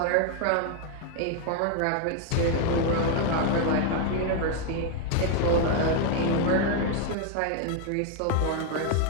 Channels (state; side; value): different; both; correlation 0.01